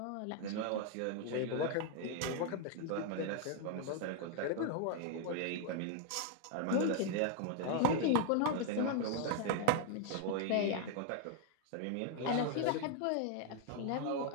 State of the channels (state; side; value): different; both; correlation 0.00